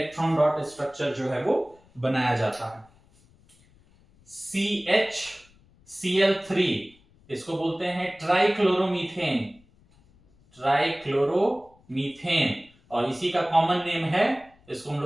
डॉट स्ट्रक्चर जो है वो बनाया जाता है। CHCl3 इसको बोलते हैं ट्राइक्लोरोमीथेन, ट्राइक्लोरोमीथेन, और इसी का कॉमन नेम है, इसको हम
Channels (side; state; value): left; noise; rumble, 30 dB below the sound